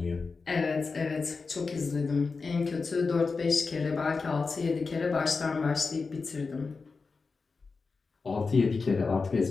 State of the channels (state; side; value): quieter; right; 4.4 dB